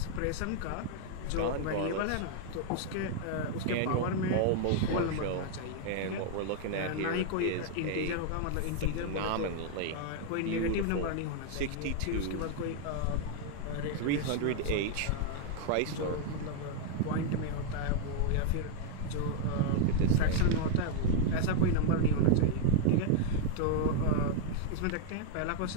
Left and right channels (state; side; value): different; both; correlation 0.00